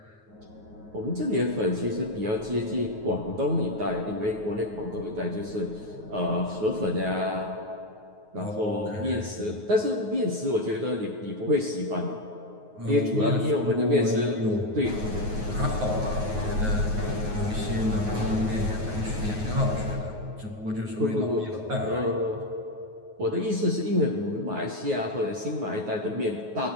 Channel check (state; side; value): late; left; 9.4 ms